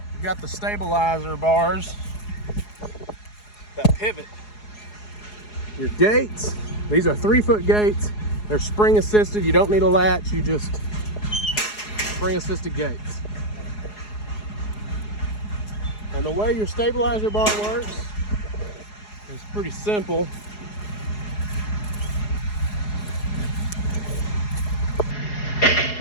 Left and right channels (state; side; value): late; right; 4.8 ms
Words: you've got the stabilizer bars that pivot. Your gates, these are 3-foot gates. They're spring assisted. You don't need a latch. You just spring assisted gates. And the way your stabilizer bar works is pretty simple.